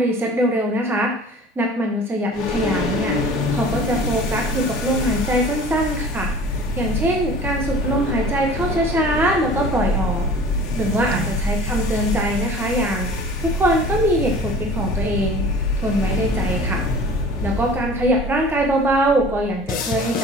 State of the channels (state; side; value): normal; both; correlation 0.44